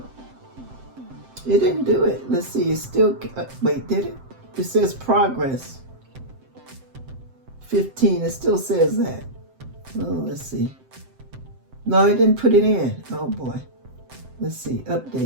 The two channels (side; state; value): left; late; 7.7 ms